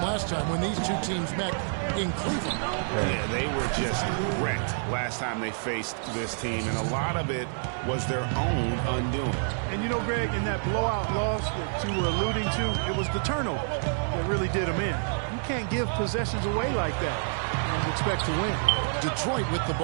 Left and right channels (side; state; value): left; silent; 59 dB below the other